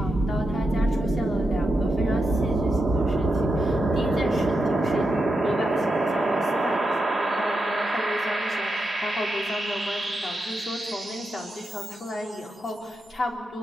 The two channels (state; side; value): normal; both; correlation 0.86